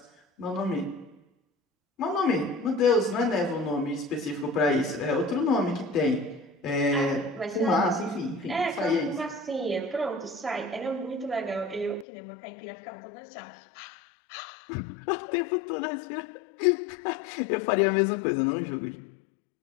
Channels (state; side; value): drops out; right; at 12.1 s